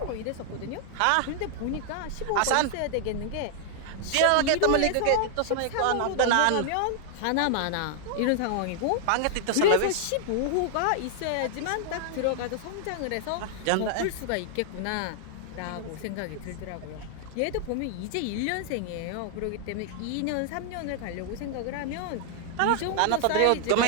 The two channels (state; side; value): different; both; correlation 0.00